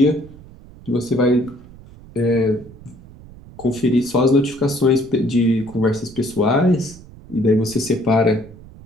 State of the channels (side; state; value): right; noise; rumble, 20 dB below the sound